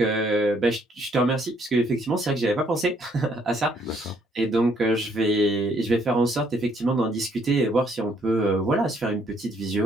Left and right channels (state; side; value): normal; both; correlation 0.68